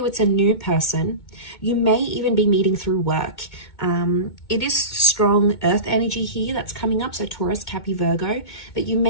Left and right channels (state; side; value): late; right; 2.2 ms